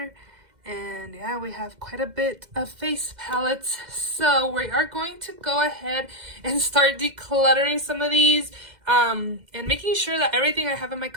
And yeah, we have quite a bit of face palettes. So we are going to go ahead and start decluttering some of these. And making sure that everything I have in my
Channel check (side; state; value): left; late; 2.0 ms